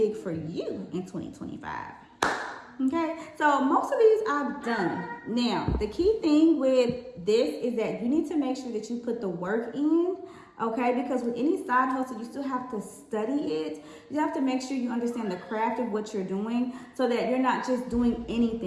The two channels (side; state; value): both; identical; correlation 1.00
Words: for you in 2025. Okay, so most of these I've done. Now, the key thing with this is that you need to make sure that you put the work in, okay? Because with any side hustle, you still have to study it. You have to make sure you understand the craft of what you're doing so that you're not just doing